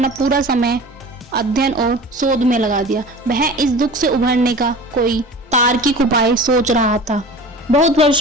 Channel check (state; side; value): normal; both; correlation 0.38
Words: पूरा समय अध्ययन और शोध में लगा दिया। वह इस दुख से उभरने का कोई तार्किक उपाय सोच रहा था। बहुत